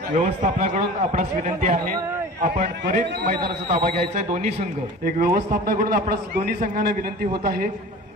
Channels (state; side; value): normal; both; correlation 0.38